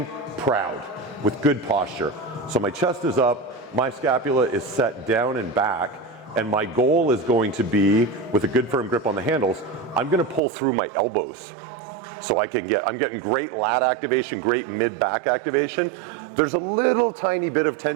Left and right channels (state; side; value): drops out; left; at 10.4 s